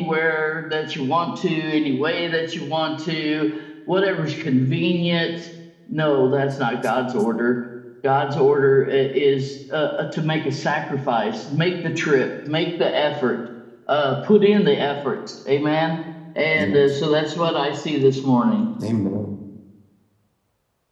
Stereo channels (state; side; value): identical; both; correlation 1.00